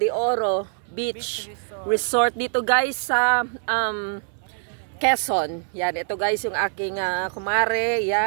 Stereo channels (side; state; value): left; silent; 63 dB below the other